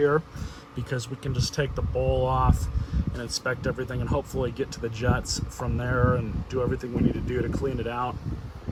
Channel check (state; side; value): identical; both; correlation 1.00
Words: because we can just take the bowl off and inspect everything and hopefully get to the jets from there and do everything we need to do to clean it out.